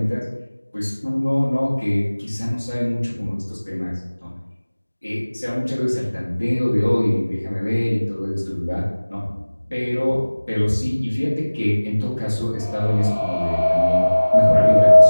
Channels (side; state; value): both; inverted; correlation -1.00